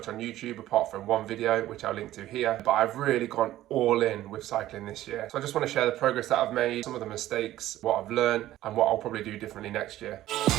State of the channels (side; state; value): left; quieter; 14.3 dB